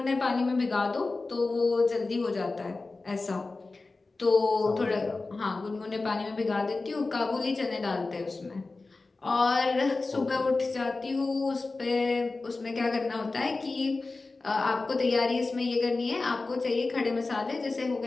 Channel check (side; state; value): right; quieter; 3.6 dB